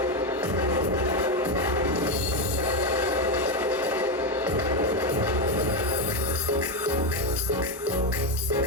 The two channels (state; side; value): normal; both; correlation 0.09